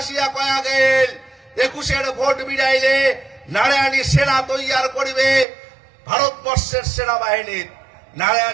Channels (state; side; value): drops out; left; at 5.5 s